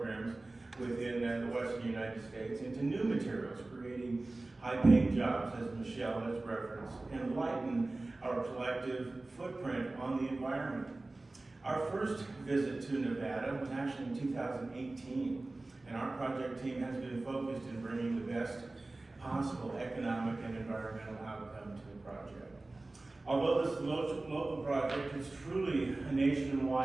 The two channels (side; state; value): left; quieter; 3.0 dB